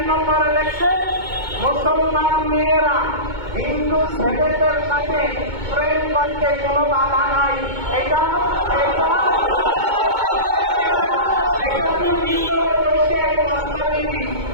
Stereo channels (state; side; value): late; left; 2.2 ms